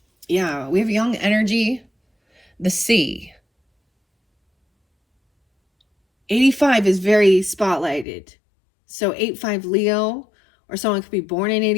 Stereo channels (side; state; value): right; drops out; at 8.1 s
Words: Yeah, we have young energy. The Sea. 85 is very spotlighted. So 8-5 Leo, or someone could be born in